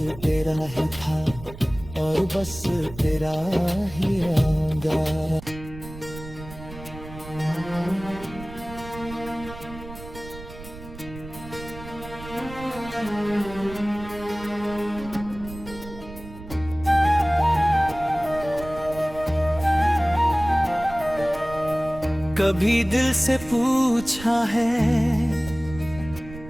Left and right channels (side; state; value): right; noise; rumble, 15 dB below the sound